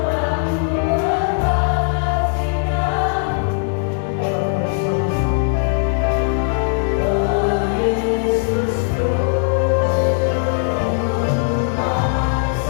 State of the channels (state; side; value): silent; right; digital silence